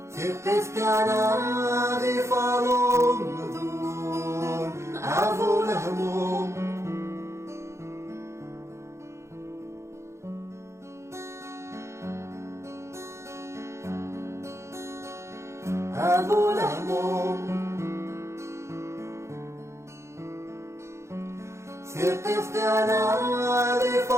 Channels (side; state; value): left; late; 0.14 ms